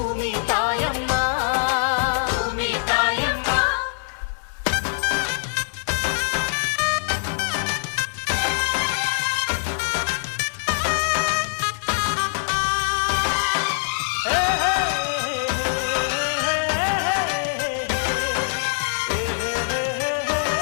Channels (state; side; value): silent; right; digital silence